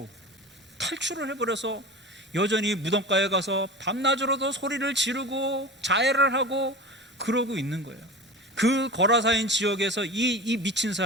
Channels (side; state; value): both; normal; correlation 0.32